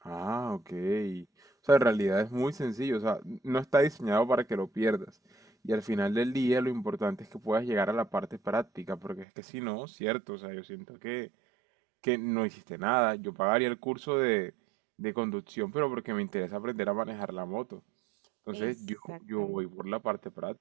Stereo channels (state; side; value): drops out; left; at 9.2 s